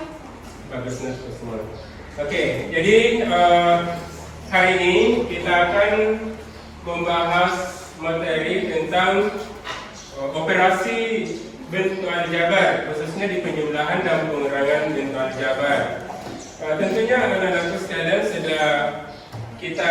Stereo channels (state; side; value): identical; both; correlation 1.00